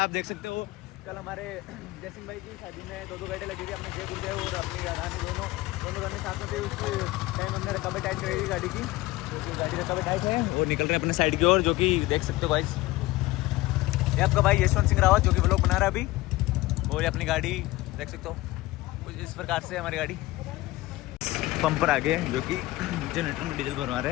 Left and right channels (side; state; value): right; quieter; 18.8 dB